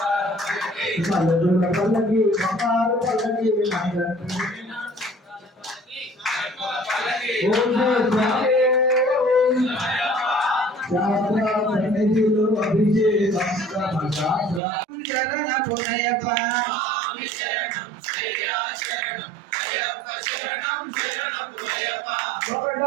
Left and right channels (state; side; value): drops out; left; at 14.6 s